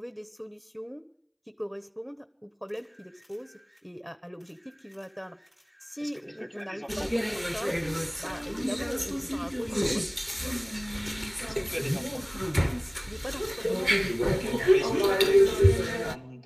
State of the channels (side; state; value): both; identical; correlation 1.00